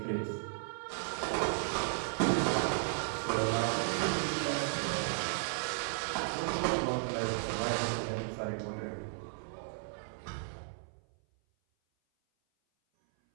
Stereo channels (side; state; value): left; silent; 55 dB below the other